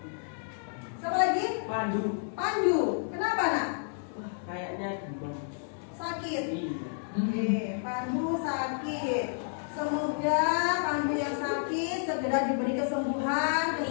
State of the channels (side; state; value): right; silent; digital silence